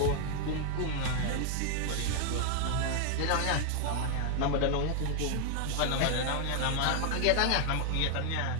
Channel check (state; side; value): different; both; correlation 0.00